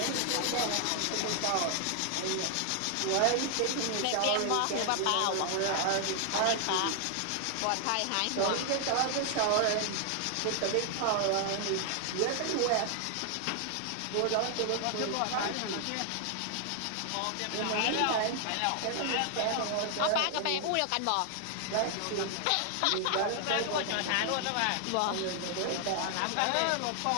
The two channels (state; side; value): different; both; correlation 0.00